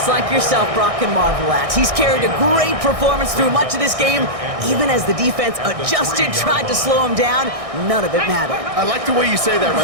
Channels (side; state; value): left; late; 1.6 ms